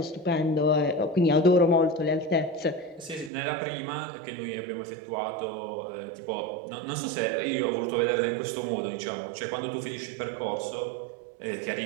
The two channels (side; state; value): left; drops out; at 3.3 s